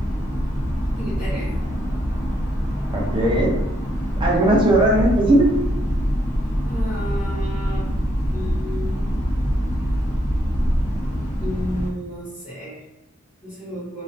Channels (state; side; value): normal; both; correlation 0.76